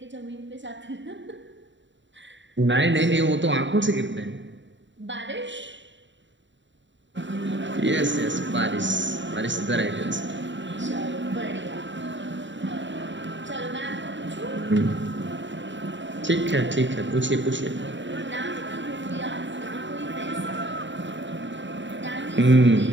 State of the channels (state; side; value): late; left; 0.54 ms